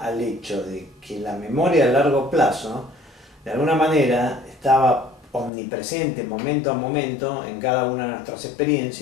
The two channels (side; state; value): right; drops out; at 5.5 s